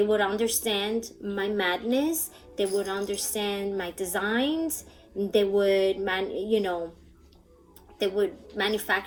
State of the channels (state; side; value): identical; both; correlation 1.00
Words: would understand my madness. They would understand my designs. They would they would